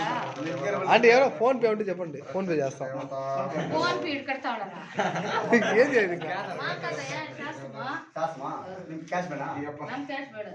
అంటే ఎవరో ఫోన్ పే ఉంటే చెప్పండి ఫోన్ పే చేస్తాం ఫోన్ పే కడతా ఏం చేయాలి ఇంకా శాస్మా క్యాష్ మేనా ನಮ್ ಕ್ಯಾಶ್ ಬೇಡ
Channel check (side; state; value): both; identical; correlation 1.00